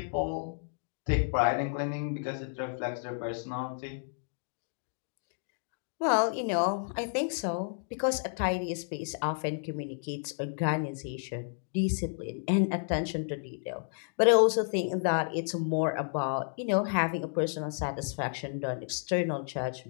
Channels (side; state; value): right; silent; digital silence